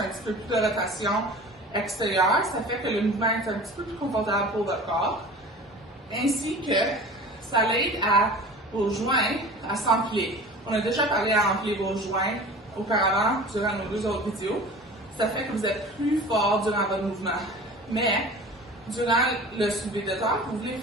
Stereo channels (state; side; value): normal; both; correlation 0.39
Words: petit peu plus de rotation extérieure, ça fait que le mouvement est un petit peu plus confortable pour votre corps, ainsi que ça l'aide à vos joints à s'empiler. On a déjà parlé à empiler vos joints auparavant durant nos 2 autres vidéos. Ça fait que vous êtes plus fort durant votre mouvement. Mais durant le soulevé de terre, vous voulez